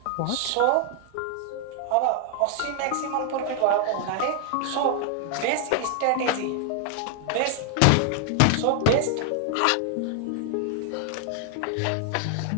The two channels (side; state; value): both; different; correlation 0.00